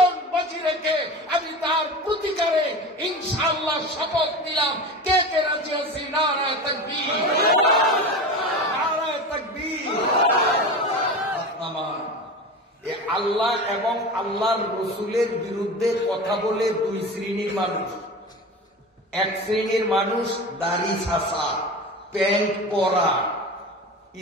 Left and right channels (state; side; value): normal; both; correlation 0.30